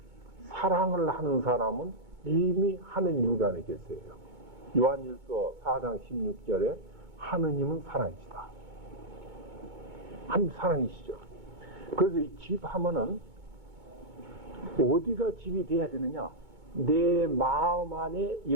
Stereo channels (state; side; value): late; left; 2.2 ms